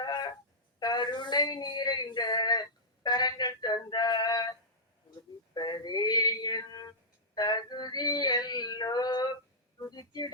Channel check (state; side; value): normal; both; correlation -0.14